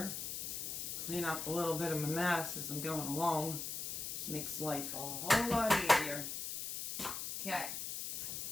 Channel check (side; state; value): left; noise; hiss, 4 dB below the sound